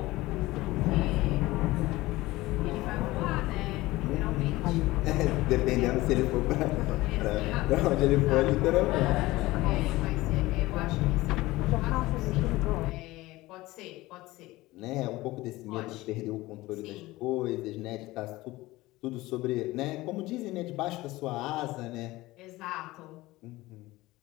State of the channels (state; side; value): quieter; right; 19.0 dB